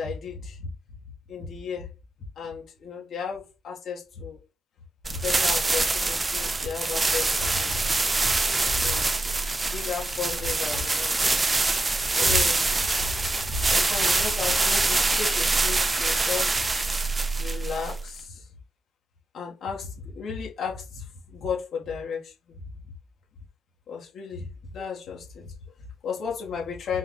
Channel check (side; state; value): both; normal; correlation 0.88